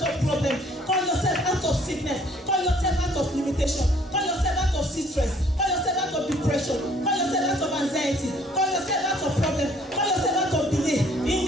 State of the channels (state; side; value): normal; both; correlation 0.59